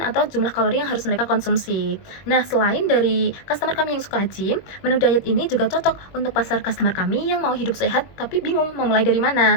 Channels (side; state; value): right; late; 21 ms